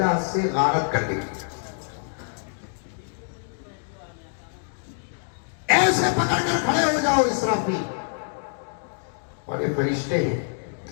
سے غارت کر دے گی۔ ایسے پکڑ کر کھڑے ہو جاؤ اسرافیل۔ اور یہ فرشتے ہیں،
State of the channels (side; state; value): right; silent; digital silence